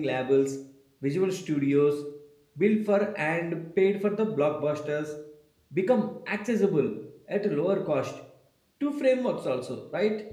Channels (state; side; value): identical; both; correlation 1.00